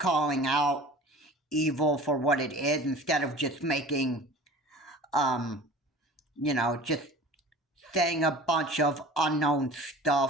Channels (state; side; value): normal; both; correlation 0.42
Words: out evil for what it is instead of just making just saying a bunch of unknown